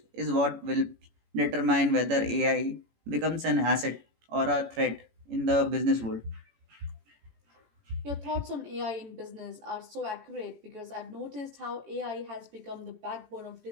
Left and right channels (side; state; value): left; late; 18 ms